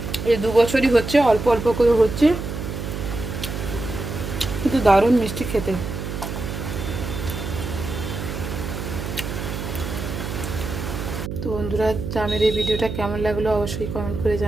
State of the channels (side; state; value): right; noise; hum, 6 dB below the sound